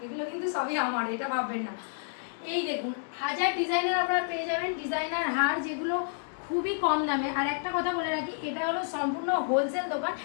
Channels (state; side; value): silent; right; digital silence